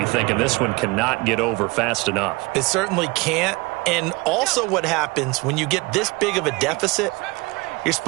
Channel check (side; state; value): left; quieter; 24.6 dB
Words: thinking this one cannot get over fast enough. It certainly can't. And also what happens when you get this big of a deficit, you're